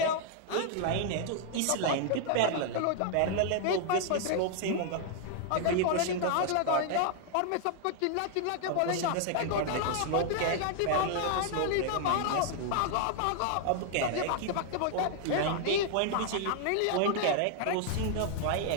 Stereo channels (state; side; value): different; both; correlation 0.00